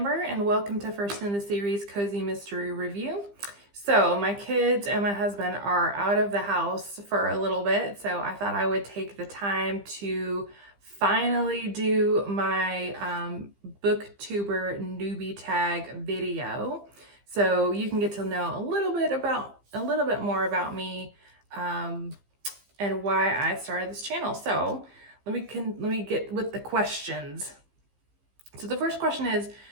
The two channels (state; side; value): late; left; 15 ms